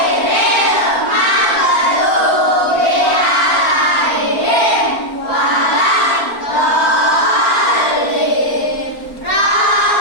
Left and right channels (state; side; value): late; right; 4.4 ms